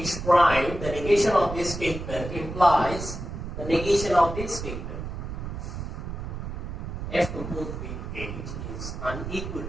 prime, the negation of this statement implies the negation of this statement. F composed with H is unequal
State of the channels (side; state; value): right; noise; rumble, 7 dB below the sound